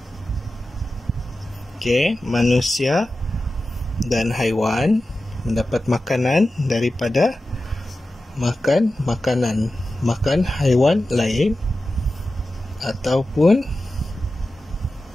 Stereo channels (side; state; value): both; normal; correlation 0.93